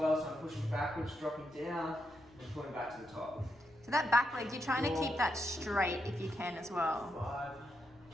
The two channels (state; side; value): noise; left; rumble, 29 dB below the sound